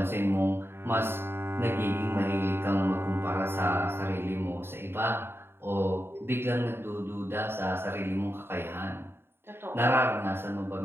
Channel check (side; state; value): left; late; 0.11 ms